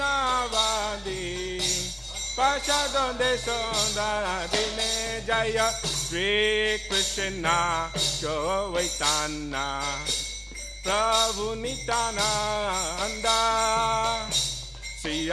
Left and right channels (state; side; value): identical; both; correlation 1.00